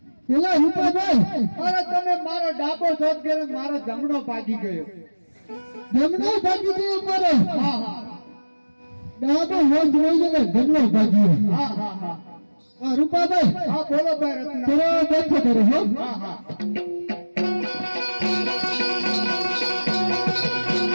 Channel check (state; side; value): inverted; both; correlation -1.00